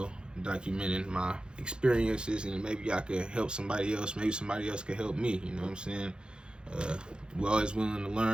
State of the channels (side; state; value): left; late; 0.050 ms